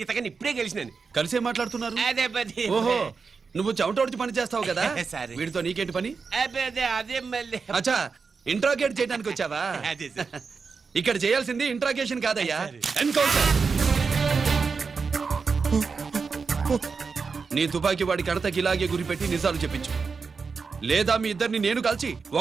ఇతగాని ఇప్పుడే గెలిచినాను. కలిసే మాట్లాడుతున్నారు. అదే పది. ఓహో, నువ్వు చెమటోడ్చి పని చేస్తావు కదా. సరే. వీడితో నీకేంటి పని? అదే మళ్ళీ అచ్చా, ఇంట్రాగేట్ చేయడానికి వచ్చావా? అదే సార్. ఇక్కడ చేయాల్సింది ఇంట్రాగేషన్ కాదయ్యా, ఎన్కౌంటర్. నీ తుపాకీ వాడి కడతకి ఇలాగే గురిపెట్టి నిజాలు చెప్పించు, లేదా మీ ఇద్దరిని నేను కాల్చి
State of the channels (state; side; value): quieter; left; 5.0 dB